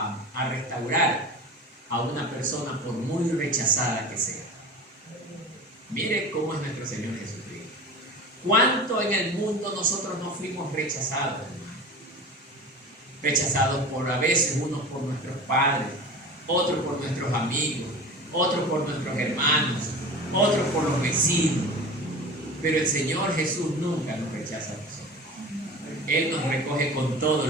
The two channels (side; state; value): both; normal; correlation 0.34